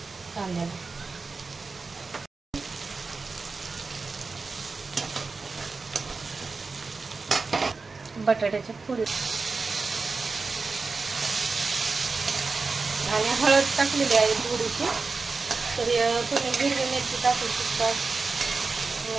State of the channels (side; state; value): left; quieter; 4.2 dB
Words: कांद्याला। बटाट्याच्या फोडी आणि हळद टाकलेली आहे थोडीशी। तर तुम्ही हिरवी मिरची टाकू शकता,